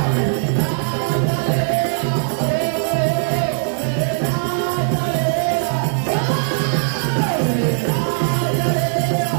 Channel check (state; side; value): silent; left; digital silence